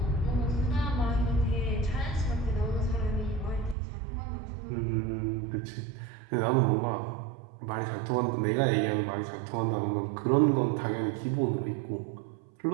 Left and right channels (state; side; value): drops out; left; at 3.8 s